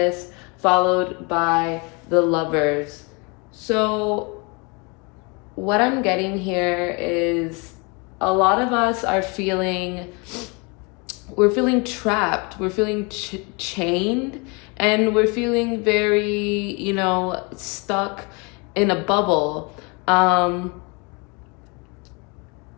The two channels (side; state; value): right; quieter; 30.5 dB